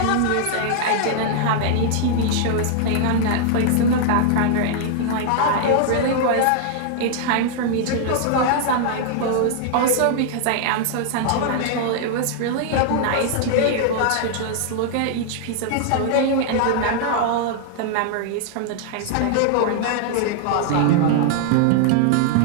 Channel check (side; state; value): both; different; correlation -0.01